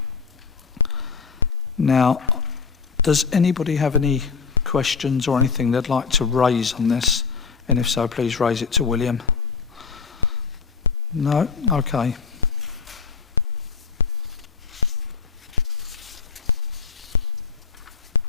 Now, does anybody have any questions or anything they'd like to raise on this? And if so, please raise it to William. No? Okay.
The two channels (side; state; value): right; quieter; 5.3 dB